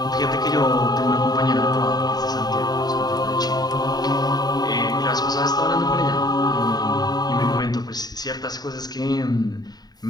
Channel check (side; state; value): right; late; 0.19 ms